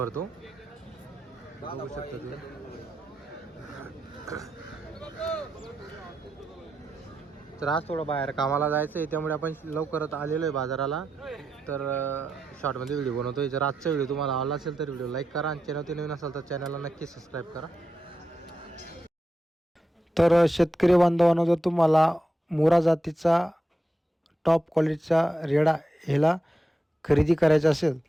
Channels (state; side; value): normal; both; correlation 0.87